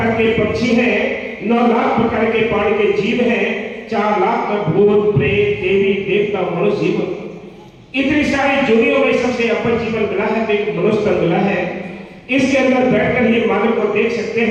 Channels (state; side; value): identical; both; correlation 1.00